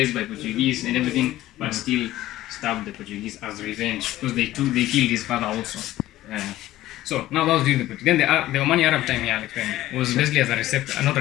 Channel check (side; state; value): right; quieter; 15.2 dB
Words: by Portuguese and everything, but still stabbed the Portuguese as revenge because they killed his father also. So now that was during the Portuguese. Then the Omani Arab time here was basically as a reception, not a